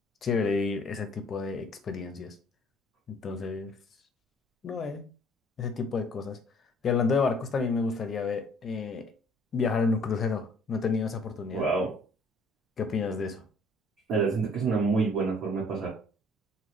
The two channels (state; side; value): normal; both; correlation 0.57